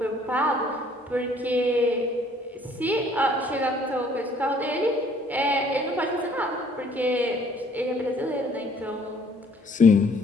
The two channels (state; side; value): normal; both; correlation 0.60